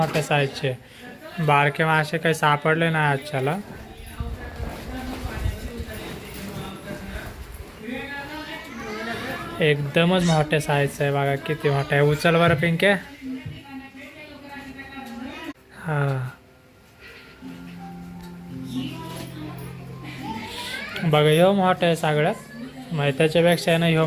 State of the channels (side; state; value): both; identical; correlation 1.00